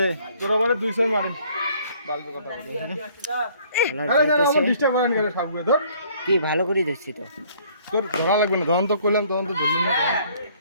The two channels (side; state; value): both; inverted; correlation -0.60